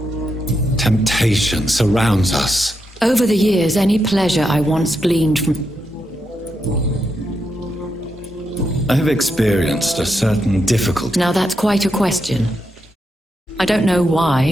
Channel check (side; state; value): both; normal; correlation 0.83